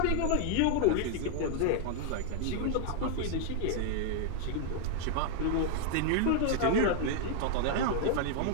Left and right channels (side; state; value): both; different; correlation -0.01